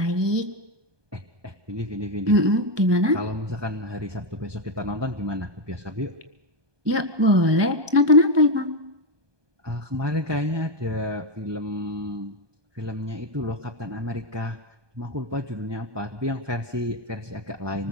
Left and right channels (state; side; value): late; left; 1.2 ms